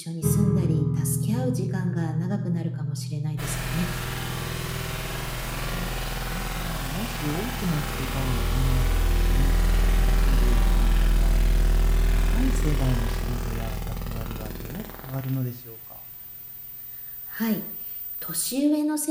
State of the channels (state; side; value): identical; both; correlation 1.00